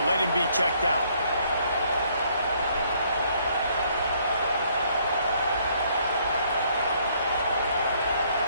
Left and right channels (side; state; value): both; inverted; correlation -0.66